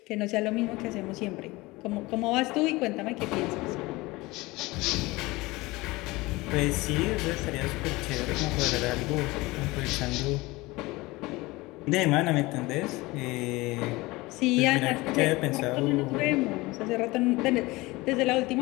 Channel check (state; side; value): quieter; right; 21.6 dB